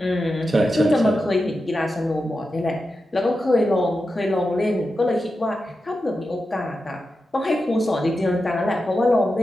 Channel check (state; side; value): normal; both; correlation 0.90